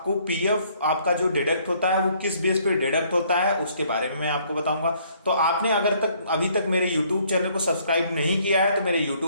पीएफ आपका जो डिडक्ट होता है वो किस बेस पे डिडक्ट होता है उसके बारे में मैं आपको बताऊंगा। तो आपने अगर तक अभी तक मेरे यूट्यूब चैनल को सब्सक्राइब नहीं किया है तो मेरे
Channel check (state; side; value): inverted; both; correlation -0.64